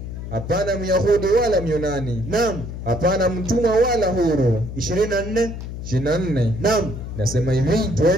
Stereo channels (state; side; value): noise; left; hum, 8 dB below the sound